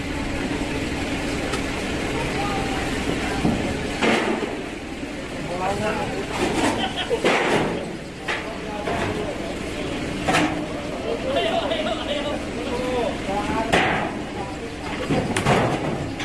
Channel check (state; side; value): identical; both; correlation 1.00